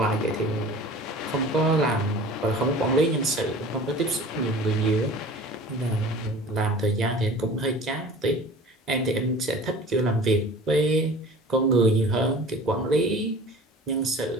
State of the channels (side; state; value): both; normal; correlation 0.42